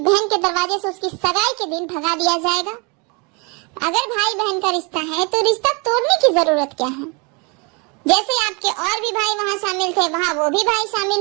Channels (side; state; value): left; quieter; 31.2 dB